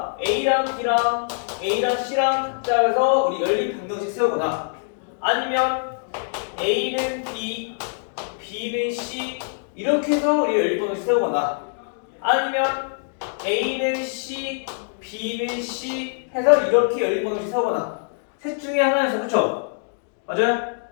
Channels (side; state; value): right; silent; digital silence